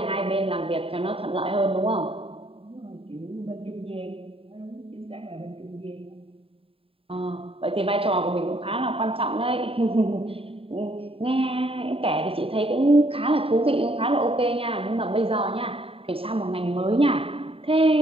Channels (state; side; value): late; left; 0.27 ms